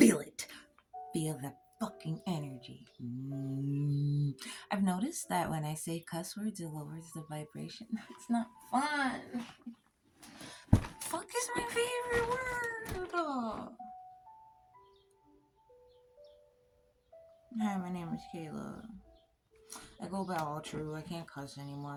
it. Feel the fucking energy. I've noticed that when I say cuss words, it lowers the vibration. It's not fun. Fuck is my favorite word. Hi, my name is Kayla. I go by Alu-tru. I can't cuss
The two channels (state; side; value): identical; both; correlation 1.00